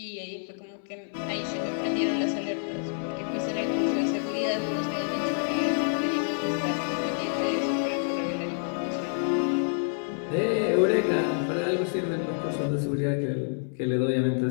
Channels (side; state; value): right; silent; digital silence